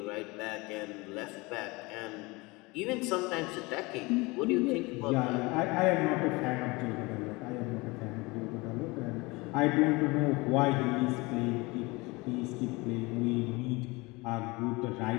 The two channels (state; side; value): quieter; right; 24.4 dB